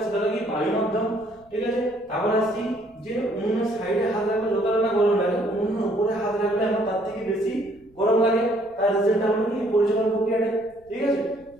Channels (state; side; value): noise; left; rumble, 29 dB below the sound